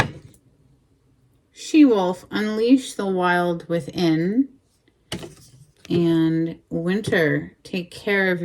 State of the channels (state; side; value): identical; both; correlation 1.00